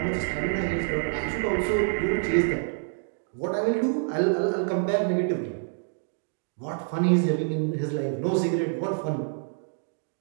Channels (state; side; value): silent; left; digital silence